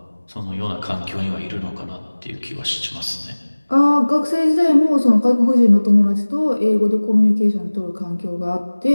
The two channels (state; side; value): inverted; both; correlation -1.00